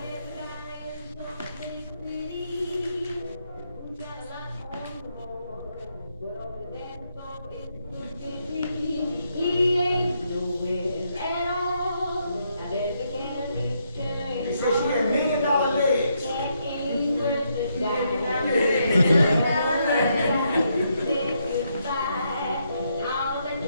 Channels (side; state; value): both; inverted; correlation -0.78